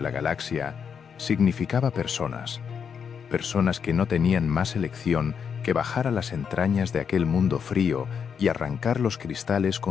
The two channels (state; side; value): quieter; right; 7.0 dB